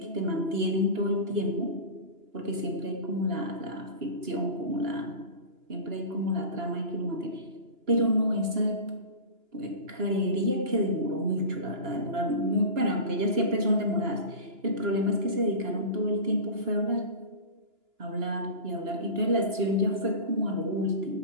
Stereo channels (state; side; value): late; left; 2.9 ms